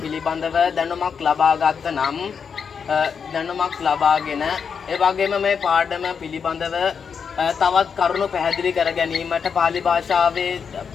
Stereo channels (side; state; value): right; quieter; 6.4 dB